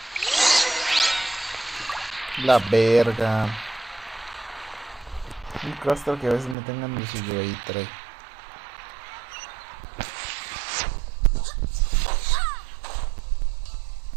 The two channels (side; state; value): left; drops out; at 6.6 s